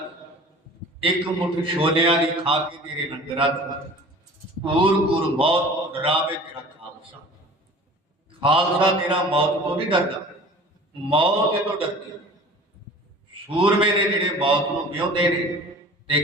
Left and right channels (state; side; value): normal; both; correlation 0.43